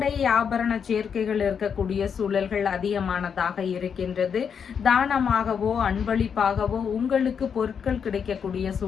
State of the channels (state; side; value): quieter; right; 7.0 dB